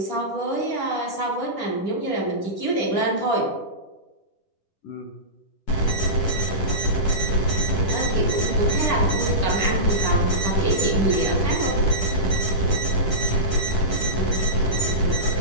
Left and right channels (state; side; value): late; right; 10 ms